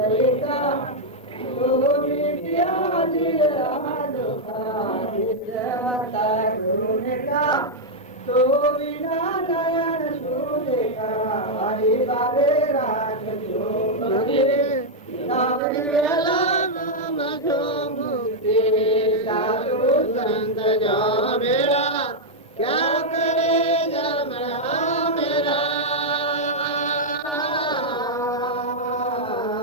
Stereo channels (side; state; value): both; normal; correlation -0.03